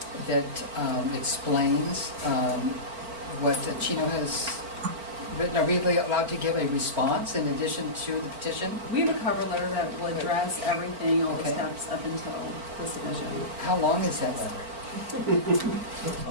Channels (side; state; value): left; late; 4.4 ms